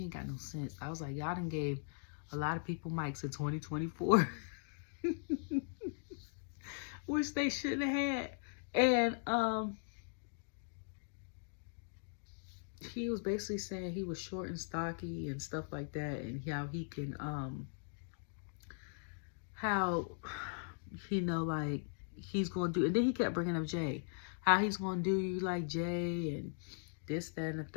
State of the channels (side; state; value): right; silent; digital silence